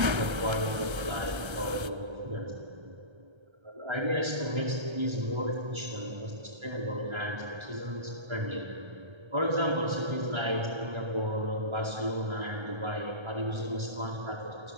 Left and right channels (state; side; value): late; left; 1.3 ms